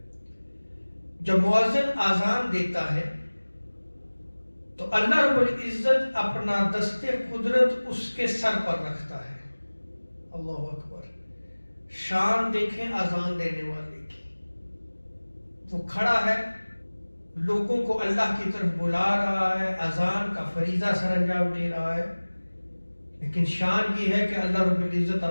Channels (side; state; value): both; inverted; correlation -1.00